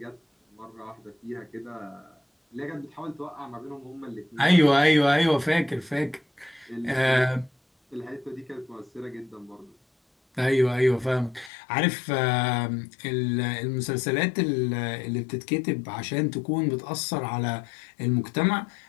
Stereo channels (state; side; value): drops out; right; at 11.5 s